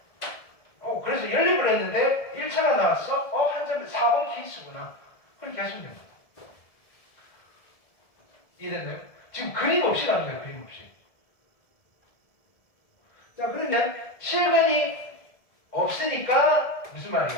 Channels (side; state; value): right; late; 1.7 ms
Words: 그래서 연립을 했는데 1차가 나왔어? 한 점에 4번 케이스구나. 그렇게 하시면 됩니다. 이해됐나요? 지금 그림 없이 가는 거예요, 그림 없이. 자, 그러면 실근이 없으니까 무슨